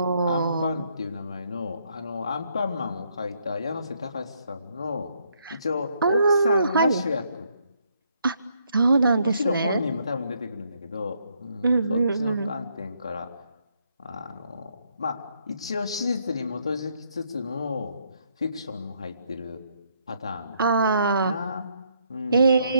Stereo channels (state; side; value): inverted; both; correlation -0.73